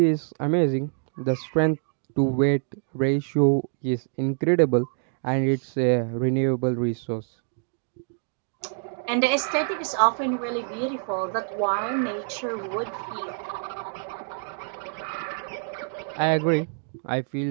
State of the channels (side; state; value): left; silent; 61 dB below the other